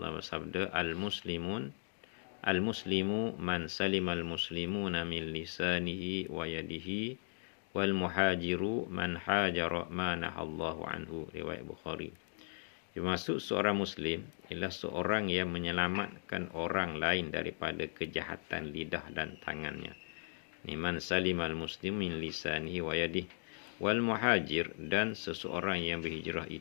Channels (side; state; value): right; silent; digital silence